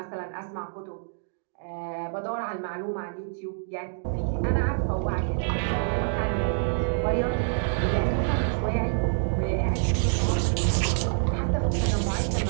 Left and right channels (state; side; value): silent; left; digital silence